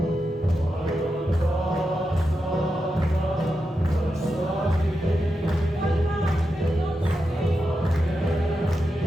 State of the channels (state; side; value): normal; both; correlation 0.88